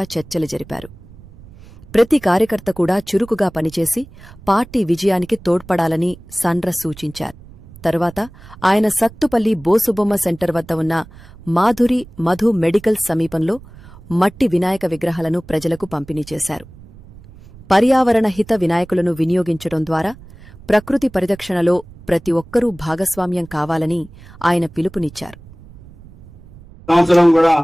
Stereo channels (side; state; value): right; noise; rumble, 21 dB below the sound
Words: చర్చలు జరిపారు. ప్రతి కార్యకర్త కూడా చురుకుగా పనిచేసి పార్టీ విజయానికి తోడ్పడాలని సాండ్ర సూచించారు. తరువాత ఆయన సత్తుపల్లి బోసుబొమ్మ సెంటర్ వద్ద ఉన్న మాధురి మధు మెడికల్ సమీపంలో మట్టి వినాయక విగ్రహాలను ప్రజలకు పంపిణీ చేశారు. పర్యావరణ హిత వినాయకులను వినియోగించడం ద్వారా ప్రకృతి పరిరక్షణలో ప్రతి ఒక్కరూ భాగస్వామ్యం కావాలని ఆయన పిలుపునిచ్చారు. సంవత్సరం కూడా